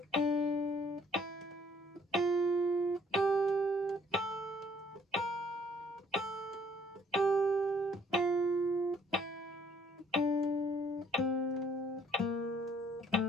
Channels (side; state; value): both; normal; correlation 0.61